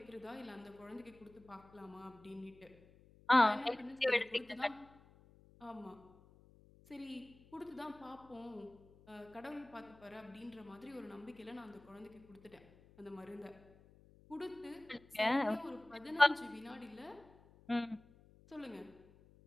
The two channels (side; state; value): left; noise; hum, 25 dB below the sound